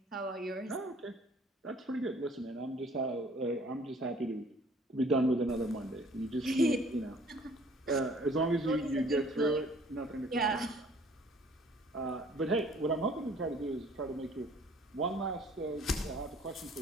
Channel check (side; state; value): both; normal; correlation 0.55